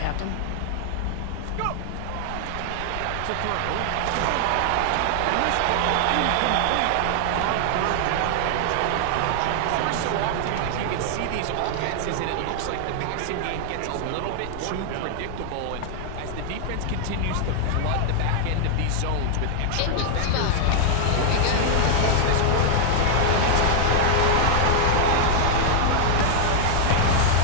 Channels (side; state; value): both; different; correlation 0.00